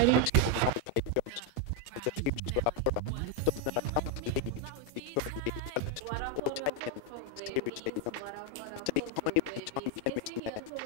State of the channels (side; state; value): both; different; correlation 0.01